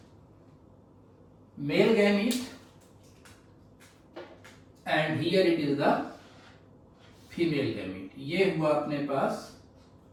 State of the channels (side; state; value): both; identical; correlation 1.00